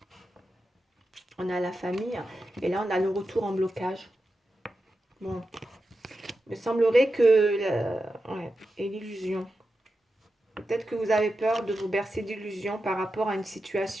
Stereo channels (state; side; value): normal; both; correlation 0.90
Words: On a la famille et là, on a le retour en blocage. Bon, il me semblerait que... ouais, et l'illusion. Peut-être que vous avez peur de vous bercer d'illusions par rapport à une